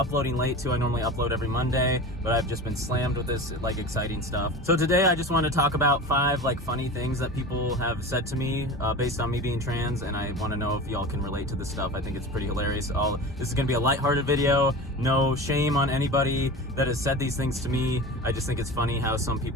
late too. I normally upload every Monday, but I've just been slammed with this like exciting stuff. So today I just want to talk about 5 like funny things that people have said to me based on me being trans, and I want to know if y'all can relate to this stuff. I think it's pretty hilarious. This is gonna be a lighthearted video. No shame on anybody that has said these things to me. I just think it's funny how some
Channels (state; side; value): normal; both; correlation 0.32